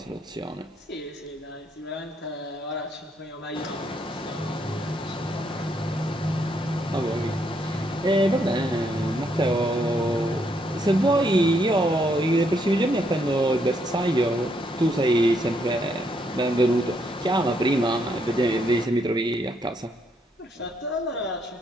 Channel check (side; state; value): both; normal; correlation 0.74